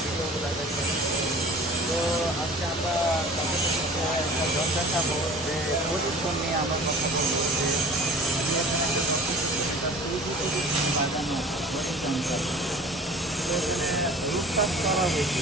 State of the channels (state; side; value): normal; both; correlation 0.44